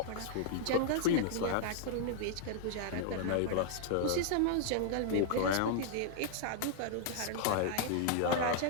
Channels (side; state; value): both; different; correlation 0.00